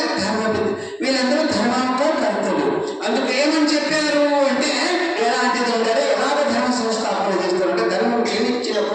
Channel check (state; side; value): identical; both; correlation 1.00